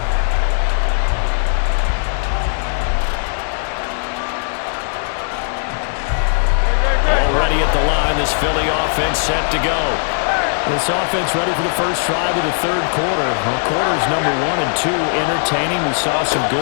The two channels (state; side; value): silent; right; digital silence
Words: Already at the line, this Philly offense set to go. This offense ready for the first drive of the third quarter. Well, quarters number 1 and 2 entertaining. We saw some